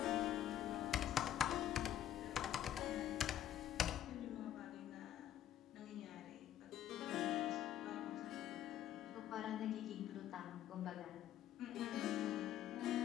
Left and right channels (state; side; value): quieter; right; 11.3 dB